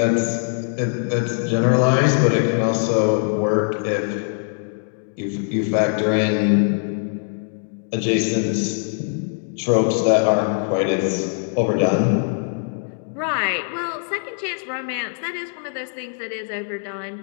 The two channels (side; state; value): right; silent; digital silence